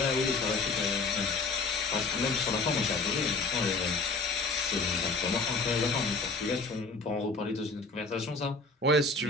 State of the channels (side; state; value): right; quieter; 3.7 dB